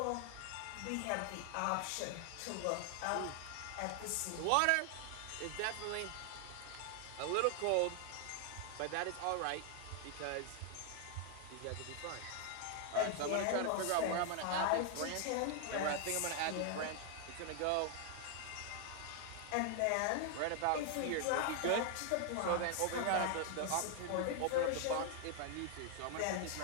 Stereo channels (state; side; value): different; both; correlation 0.00